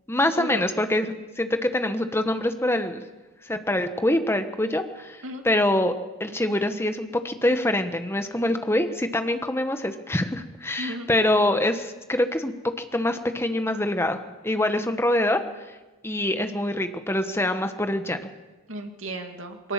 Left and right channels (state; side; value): normal; both; correlation 0.67